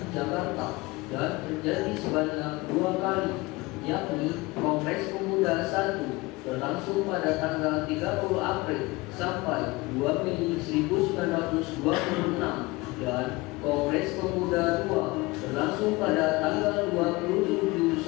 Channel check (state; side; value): quieter; right; 22.3 dB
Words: Jakarta dan terjadi sebanyak 2 kali, yakni Kongres Pemuda 1 berlangsung pada tanggal 30 April sampai 2 Mei 1926 dan Kongres Pemuda 2 berlangsung pada tanggal 27